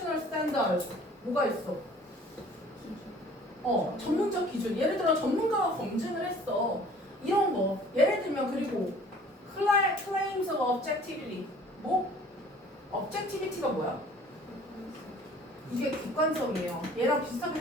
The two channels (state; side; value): normal; both; correlation 0.51